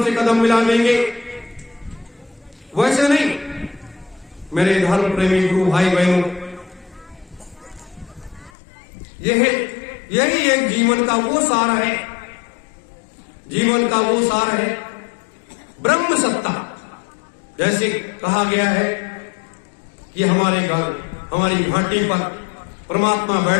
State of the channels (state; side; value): drops out; right; at 8.5 s